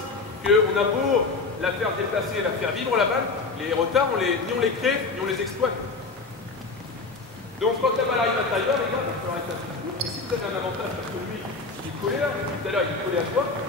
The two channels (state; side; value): quieter; right; 3.9 dB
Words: qu'on a beau la faire déplacer, la faire vivre la balle, les retards, ni on les crée, ni on les exploite. Donc quand la balle arrive à l'intérieur, les gars, il va falloir être assez court. Et si vous avez un avantage parce que lui, il est collé là, tout à l'heure il est collé à toi,